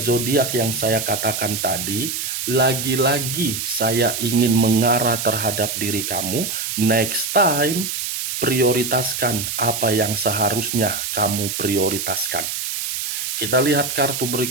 yang saya katakan tadi, lagi-lagi saya ingin mengarah terhadap diri kamu. Next time, prioritaskan apa yang seharusnya kamu prioritaskan. Kita lihat kartu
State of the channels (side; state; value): right; noise; hiss, 3 dB below the sound